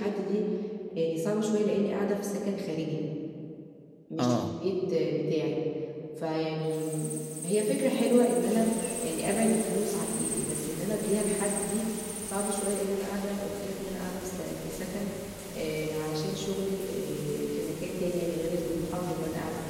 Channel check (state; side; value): identical; both; correlation 1.00